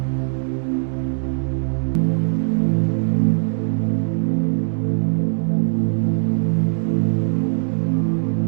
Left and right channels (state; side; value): silent; left; digital silence